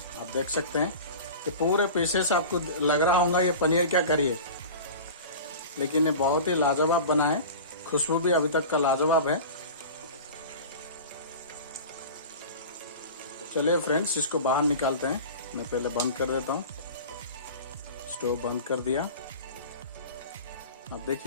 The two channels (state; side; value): inverted; both; correlation -0.35